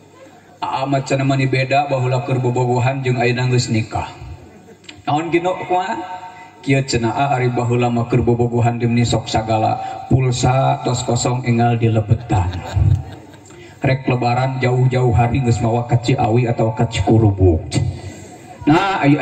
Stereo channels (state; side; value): identical; both; correlation 1.00